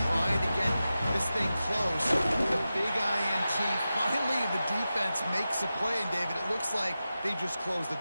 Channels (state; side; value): inverted; both; correlation -0.93